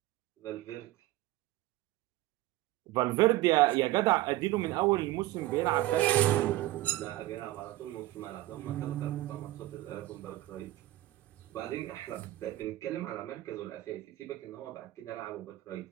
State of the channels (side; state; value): left; quieter; 16.8 dB